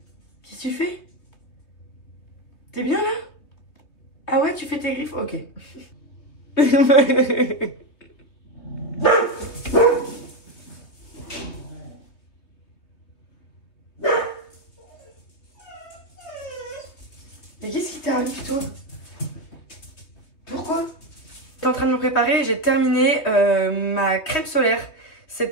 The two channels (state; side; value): late; right; 3.2 ms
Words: qu'est-ce que tu fais? T'es bien là? Ah ouais, tu fais tes griffes? Ok. Mais qu'est-ce qui t'arrive toi? Pourquoi? J'étais en train de me préparer, j'ai terminé ma crème solaire.